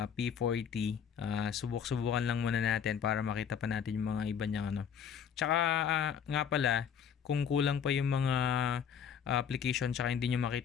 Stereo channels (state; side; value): quieter; right; 7.8 dB